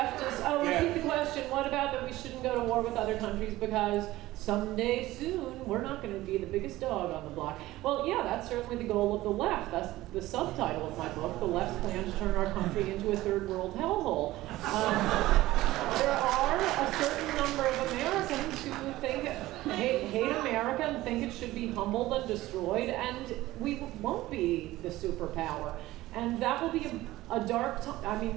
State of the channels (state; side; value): quieter; left; 16.9 dB